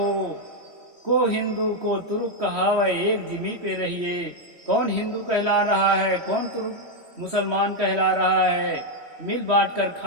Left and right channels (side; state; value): left; late; 3.1 ms